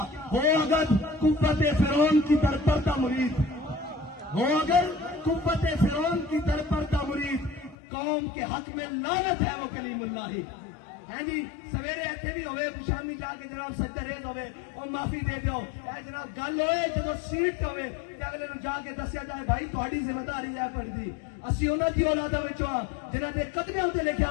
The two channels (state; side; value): drops out; right; at 7.8 s